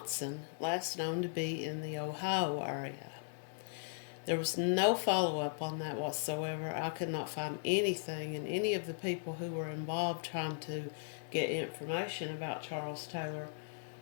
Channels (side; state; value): right; silent; digital silence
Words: last known to be in the Ohio area. There was no follow-up on that whatsoever. I could not find anything, and any of the people who were involved trying to get information about Charles Taylor